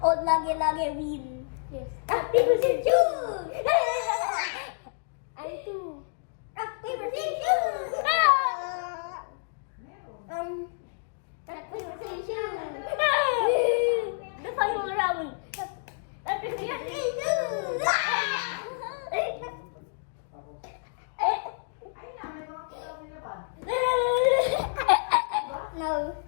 lagi win. Yes. Rock, paper, scissors, shoot! I'm 2. Rock, paper, scissors, shoot! Rock, paper, scissors, shoot! The final round. Rock, paper, scissors, shoot! No.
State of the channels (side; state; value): right; silent; digital silence